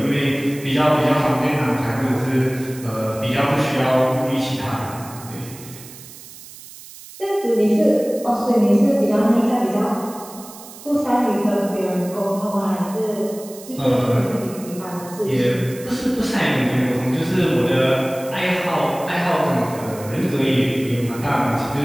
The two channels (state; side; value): noise; right; hiss, 17 dB below the sound